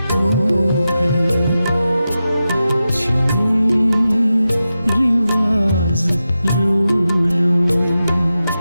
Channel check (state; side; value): inverted; both; correlation -0.92